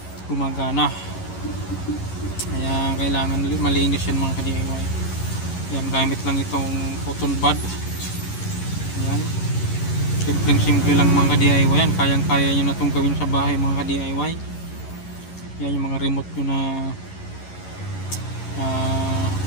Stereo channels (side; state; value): right; late; 11 ms